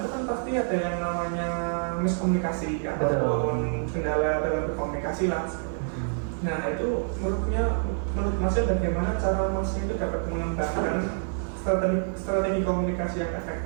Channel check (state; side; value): silent; left; digital silence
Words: kan pasti ada yang namanya miskomunikasi ataupun kendala dalam berkomunikasi lah. Nah itu menurut Masnya bagaimana cara Masnya itu dapat mengembangkan strategi komunikasi yang